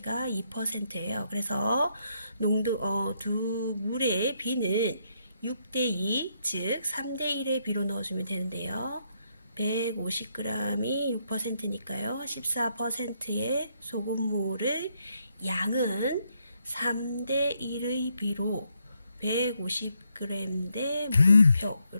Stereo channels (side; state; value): both; inverted; correlation -0.76